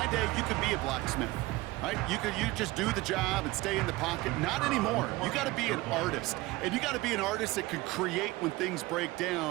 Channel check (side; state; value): left; quieter; 20.0 dB